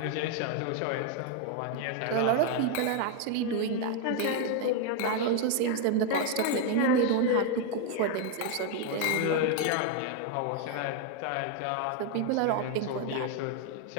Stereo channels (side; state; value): both; different; correlation 0.01